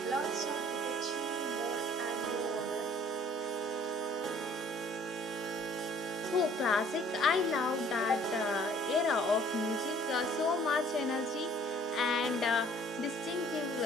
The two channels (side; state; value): both; normal; correlation 0.56